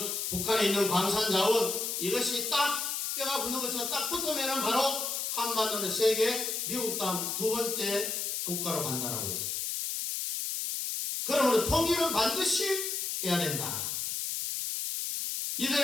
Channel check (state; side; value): noise; left; hiss, 2 dB below the sound